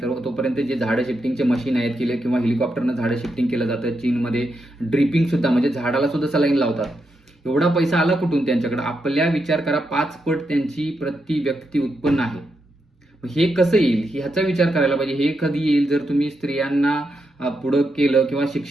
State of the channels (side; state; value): both; normal; correlation 0.84